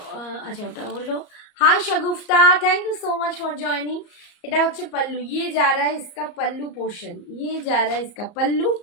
আচ্ছা ওটা হলো hi Shagufta, thank you so much for joining. এটা হচ্ছে पल्लू, ये जा रहा है इसका पल्लू पोर्शन, ये जा रहा है इसका पल्लू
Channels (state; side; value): late; right; 34 ms